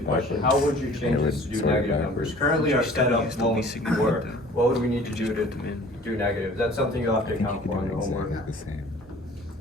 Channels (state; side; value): normal; both; correlation 0.49